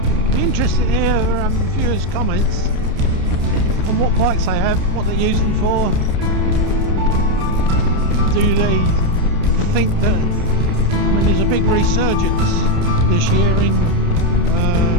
Be interesting to hear viewers' comments on what bikes they have, what they use them for. Do they think that, I mean, there's a big resurgence this year in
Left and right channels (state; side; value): late; left; 29 ms